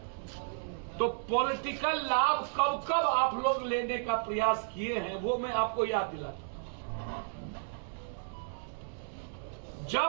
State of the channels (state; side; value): silent; left; digital silence